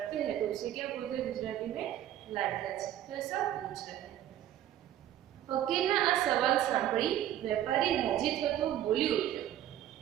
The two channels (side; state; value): left; quieter; 11.8 dB